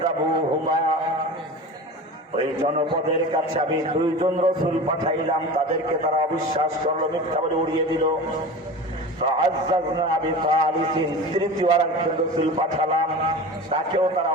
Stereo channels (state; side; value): normal; both; correlation 0.32